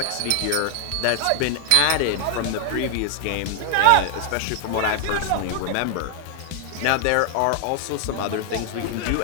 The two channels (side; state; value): both; different; correlation 0.00